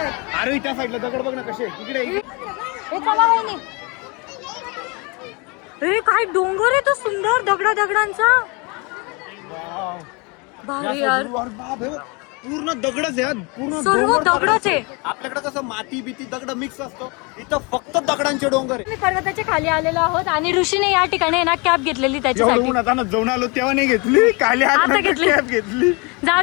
अरे त्या साईडला दगड बघ ना कसे तिकडे. हे चला वहिनी. हे काय डोंगर आहे तो सुंदर दगडांचा. भारी यार. पूर्ण दगडच आहे पूर्ण सर्व दगडच आहे. आपल्याकडे कसं माती बिती दगड मिक्स असतो इथं फक्त दगडांचे डोंगर आहे. मी पर्वताच्या खाली आलेलो आहोत आणि ऋषीने या ठिकाणी ना कॅब घेतलेली त्याच्यासाठी. जाऊन आलो तेव्हा नाही घेतली खाली आता घेतली. कॅब घेतली. जाऊ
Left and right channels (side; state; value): right; quieter; 29.5 dB